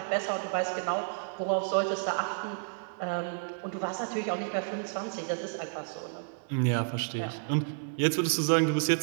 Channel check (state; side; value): silent; left; digital silence